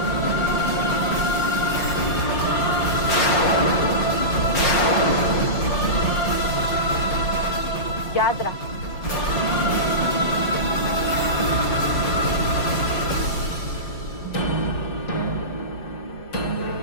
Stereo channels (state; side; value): late; right; 5.5 ms